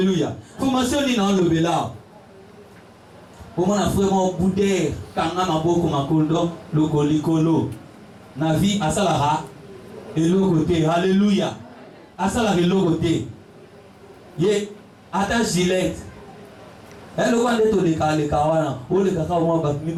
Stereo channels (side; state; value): both; identical; correlation 1.00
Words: Formation ni na lobela pour mon frère mon boudé kanga maboko makondo lokolikolo na vie asalara elokote. Alléluia. Asalara elokote ye ata gilet. Elle voit les taux de Kawana, ou les cacaos, mi